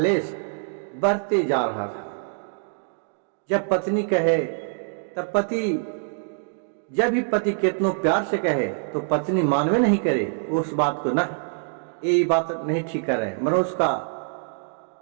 बढ़ते जा रहा था। जब पत्नी कहे तब पति, जब भी पति कितनों प्यार से कहे तो पत्नी मानवे नहीं करे उस बात को, ना ये बात नहीं ठीक कर रहे, मनो उसका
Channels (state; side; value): silent; left; digital silence